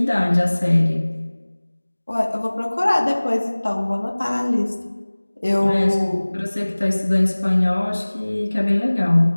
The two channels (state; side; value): inverted; both; correlation -1.00